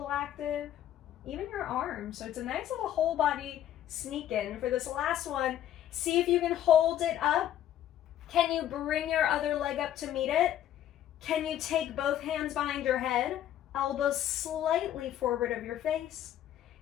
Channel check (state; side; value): quieter; right; 11.6 dB